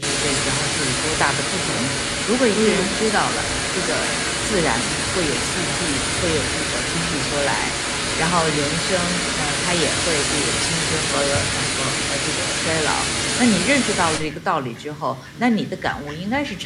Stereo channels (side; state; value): both; identical; correlation 1.00